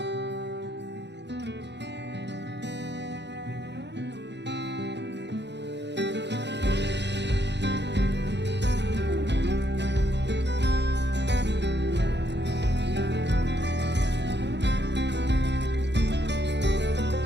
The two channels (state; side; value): late; left; 0.51 ms